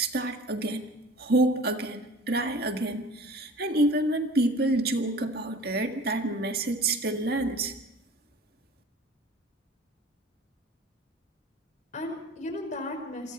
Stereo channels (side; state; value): both; normal; correlation 0.43